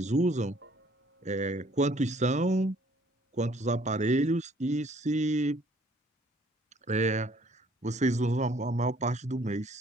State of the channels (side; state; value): both; normal; correlation 0.60